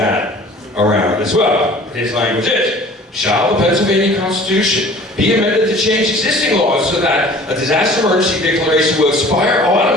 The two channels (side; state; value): both; normal; correlation 0.47